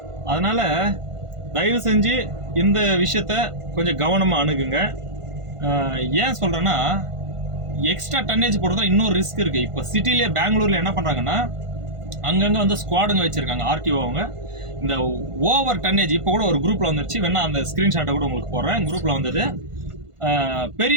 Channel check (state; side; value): late; left; 1.5 ms